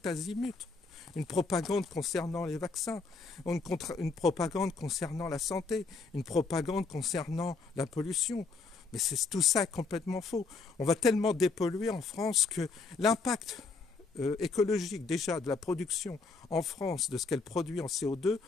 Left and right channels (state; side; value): quieter; right; 4.2 dB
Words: azimut. Une propagande concernant les vaccins, une propagande concernant la santé, une propagande concernant la pollution. Mais tout ça est complètement faux. On va tellement dépolluer en France que l'impact écologique déjà de la production en France, de ce qu'elle produit en CO2,